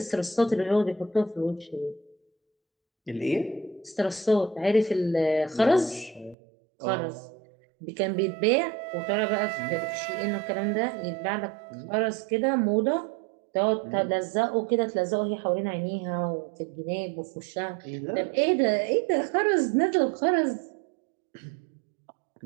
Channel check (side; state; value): left; drops out; at 6.4 s